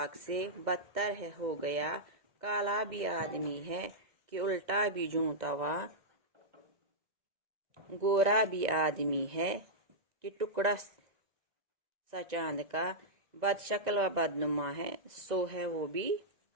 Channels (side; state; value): left; late; 2.0 ms